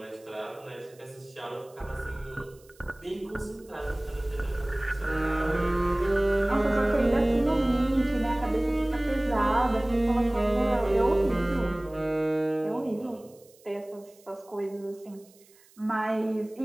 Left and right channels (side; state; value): right; noise; hiss, 28 dB below the sound